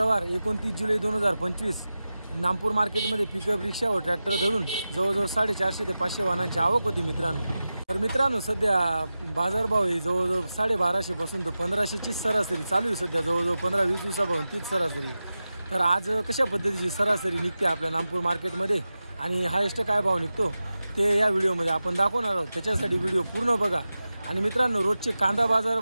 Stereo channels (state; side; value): inverted; both; correlation -0.94